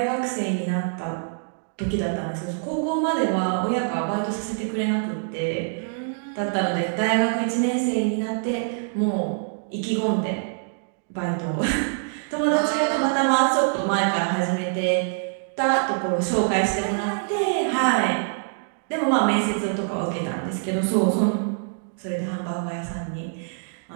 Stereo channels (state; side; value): silent; left; digital silence